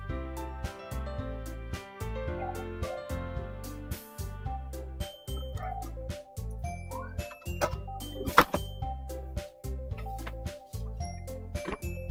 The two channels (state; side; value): identical; both; correlation 1.00